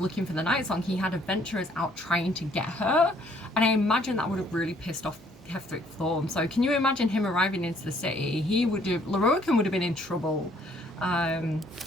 for the Night Song. He had adventurers out trying to get her, and I imagine that would have really pissed off Ketheric Thorm. So can you imagine him arriving into the city? Loroakan would have been in trouble.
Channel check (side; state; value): both; normal; correlation 0.64